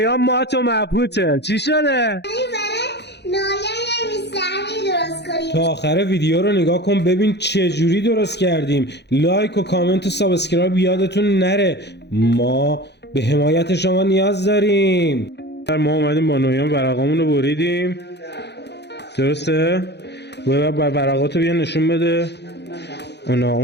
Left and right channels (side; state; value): right; late; 0.50 ms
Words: ما تو مبهوته. چی شده؟ تا آخر ویدیو رو نگاه کن ببین چه جوری درست کردیم. لایک و کامنت و سابسکرایب یادتون نره، ما به حمایت شما نیاز داریم. ما اومدیم با نویان ورقامون رو بریدیم، درسته؟ ورقاتو بیا نشون بده.